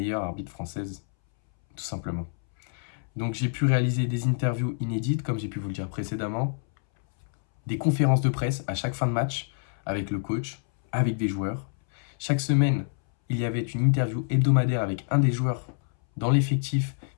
arbitre française, tout simplement. Donc j'ai pu réaliser des interviews inédites, comme j'ai pu vous le dire précédemment, des conférences de presse à chaque fin de match, avec le coach, avec des joueurs. Chaque semaine, il y avait une interview hebdomadaire avec un des joueurs dans l'effectif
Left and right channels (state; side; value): silent; right; 60 dB below the other